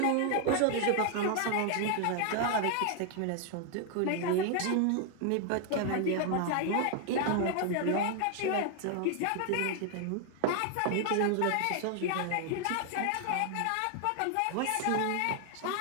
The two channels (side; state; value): both; different; correlation 0.00